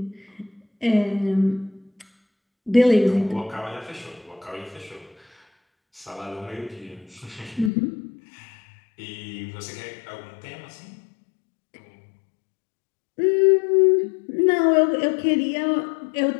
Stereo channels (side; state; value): right; drops out; at 7.7 s